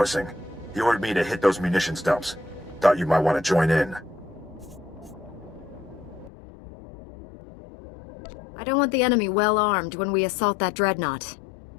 He ordered me to hit those munitions dumps. Thought you might want to join in. I don't want the enemy well armed when we assault that Dreadnought.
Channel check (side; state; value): right; drops out; at 6.3 s